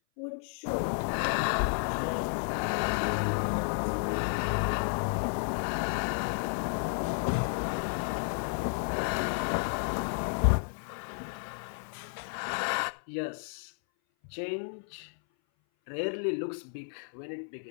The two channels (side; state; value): right; silent; 56 dB below the other